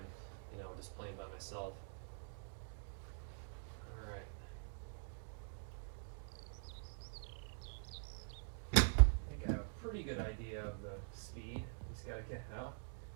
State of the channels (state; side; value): silent; left; digital silence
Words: just playing by myself. All right. I think I have a pretty good idea of the speed. Just gotta get out.